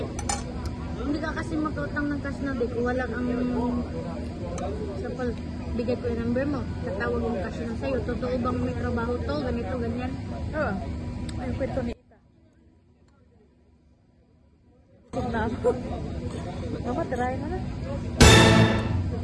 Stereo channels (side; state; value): both; identical; correlation 1.00